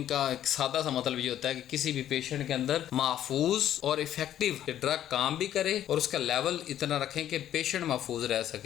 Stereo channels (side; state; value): right; quieter; 11.4 dB